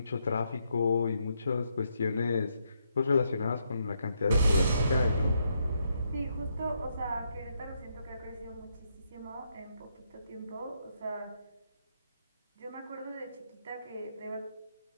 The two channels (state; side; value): inverted; both; correlation -0.77